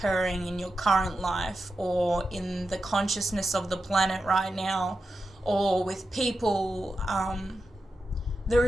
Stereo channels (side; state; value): both; normal; correlation 0.90